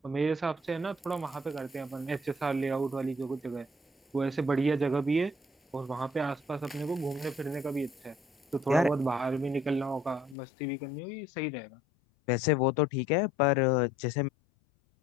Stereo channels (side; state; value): right; drops out; at 10.4 s